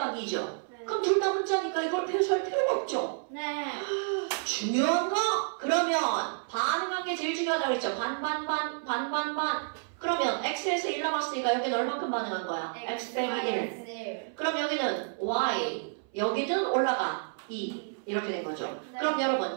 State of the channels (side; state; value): left; silent; 57 dB below the other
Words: 네. 그럼 둘 다 문자니까 이걸 배수할 필요가 없죠. 네. 중요한 거? 그러면 반응한 게 제일 중요하다고 그랬죠. 반. 그러면 X에서 1 남았으니까 여기는 얼만큼 반응한 거야? X 빼기 1. 그럼 여기는 Y. 여기는 올라가 2. 이렇게 된 거죠. 네. 그럼